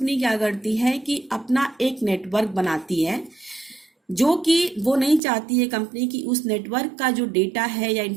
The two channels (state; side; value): drops out; left; at 5.2 s